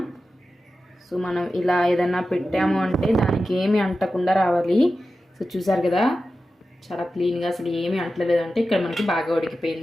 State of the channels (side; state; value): both; normal; correlation 0.93